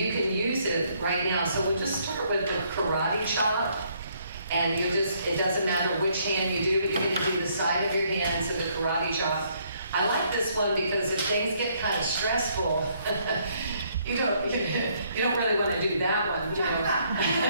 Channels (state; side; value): inverted; both; correlation -0.69